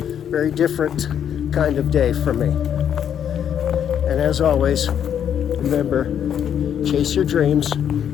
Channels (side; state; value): right; quieter; 9.0 dB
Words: different kind of day for me. And as always, remember, chase your dreams,